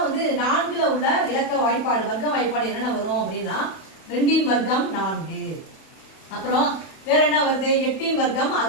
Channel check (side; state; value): right; late; 31 ms